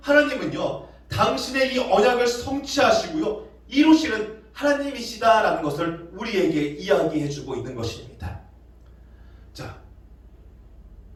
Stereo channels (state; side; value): identical; both; correlation 1.00